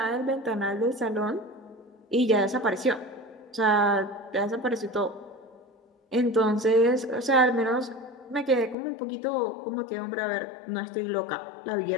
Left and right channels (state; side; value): drops out; right; at 8.8 s